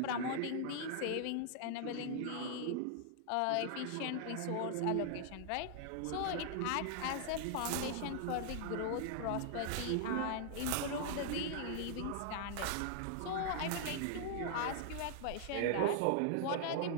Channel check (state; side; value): different; both; correlation 0.00